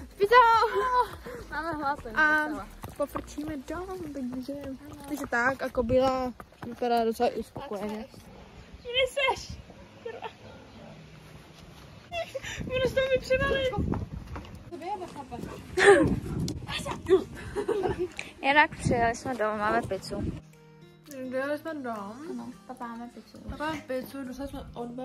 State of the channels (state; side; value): identical; both; correlation 1.00